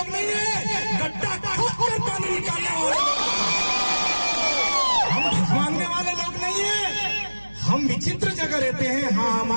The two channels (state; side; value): inverted; both; correlation -1.00